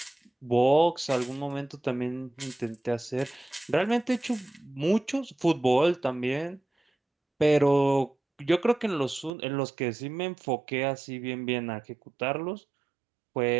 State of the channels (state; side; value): drops out; left; at 9.3 s